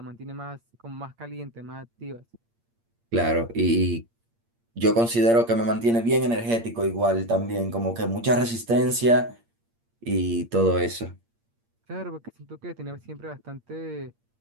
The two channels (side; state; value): left; late; 8.7 ms